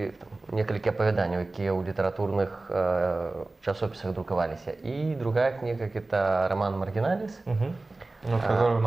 несколько опавяданняў, якія ў літаратурных часописах друкаваліся. И другая книга – это роман «Маргиналис». Который у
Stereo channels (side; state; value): left; quieter; 3.1 dB